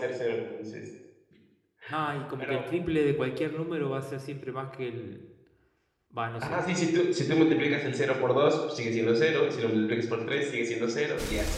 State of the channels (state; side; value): identical; both; correlation 1.00